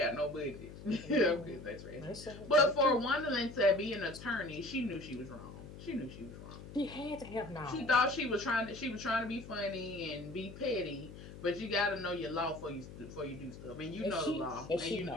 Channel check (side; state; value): left; noise; hum, 14 dB below the sound